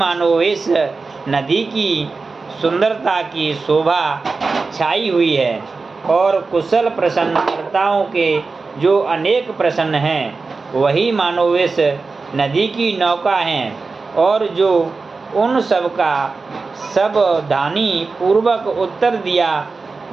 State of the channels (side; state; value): left; quieter; 4.2 dB